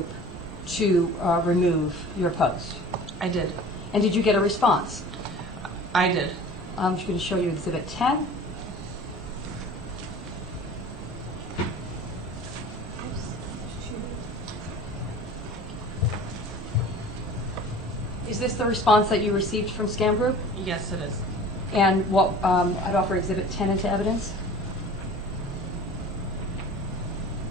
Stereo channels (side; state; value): both; normal; correlation 0.42